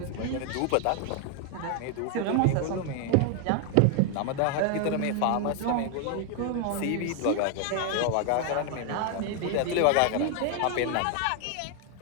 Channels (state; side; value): different; both; correlation 0.00